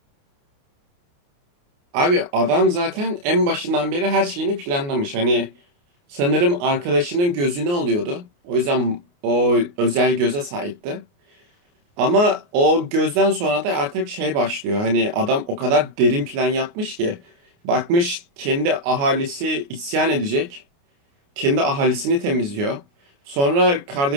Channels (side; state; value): left; late; 29 ms